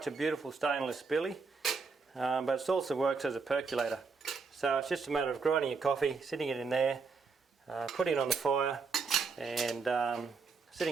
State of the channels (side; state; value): left; quieter; 4.8 dB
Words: a beautiful stainless billy, but it also works as a percolator. So it's just a matter of grinding your coffee, sitting it in there, putting it on the fire, and